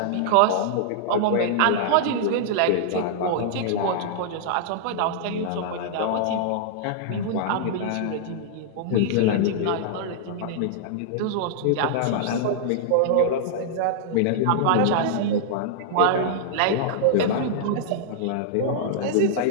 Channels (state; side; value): different; both; correlation -0.01